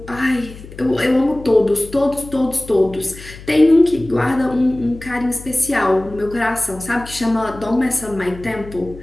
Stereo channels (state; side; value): noise; left; hum, 16 dB below the sound